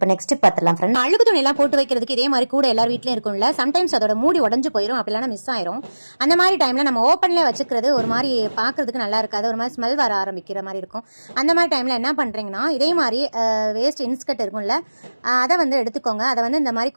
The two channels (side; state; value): both; inverted; correlation -1.00